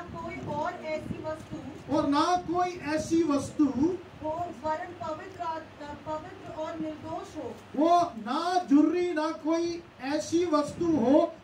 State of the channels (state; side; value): identical; both; correlation 1.00